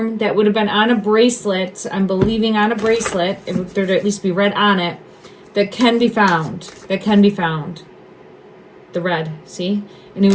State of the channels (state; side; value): identical; both; correlation 1.00